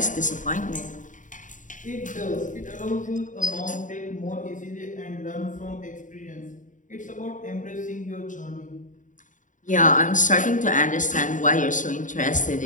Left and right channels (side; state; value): right; late; 0.37 ms